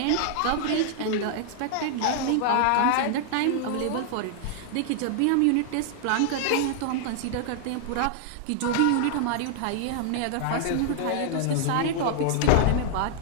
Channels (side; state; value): both; different; correlation -0.01